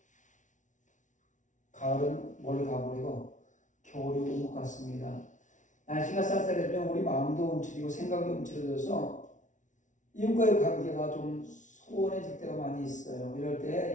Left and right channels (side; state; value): right; late; 0.37 ms